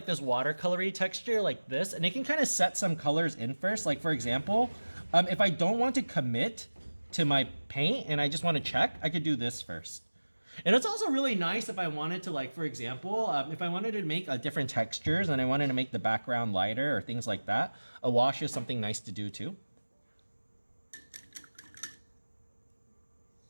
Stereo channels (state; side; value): inverted; both; correlation -1.00